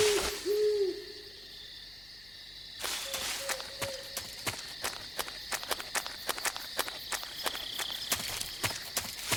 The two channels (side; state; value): left; noise; hum, 23 dB below the sound